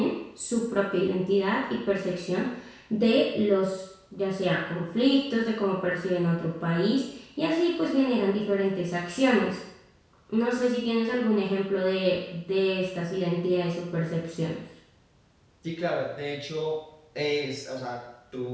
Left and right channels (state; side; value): identical; both; correlation 1.00